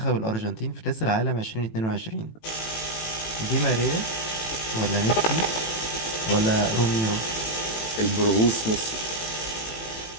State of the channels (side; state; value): right; late; 18 ms